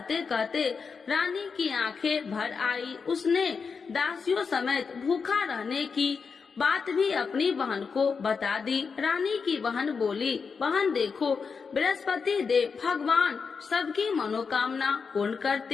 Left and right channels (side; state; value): right; quieter; 5.4 dB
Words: कहते रानी की आंखें भर आई। उसने दासियों समेत भूखा रहने की बात भी अपनी बहन को बता दी। रानी की बहन बोली, बहन देखो, बृहस्पति देव भगवान सबकी मनोकामना पूर्ण